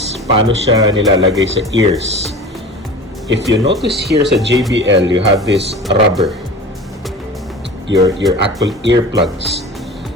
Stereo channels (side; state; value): both; normal; correlation 0.37